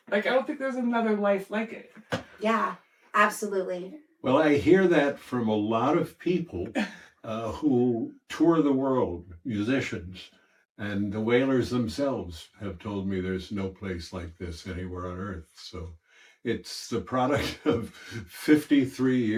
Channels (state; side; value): identical; both; correlation 1.00